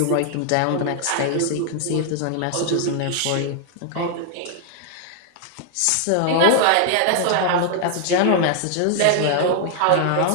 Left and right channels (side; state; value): both; different; correlation 0.00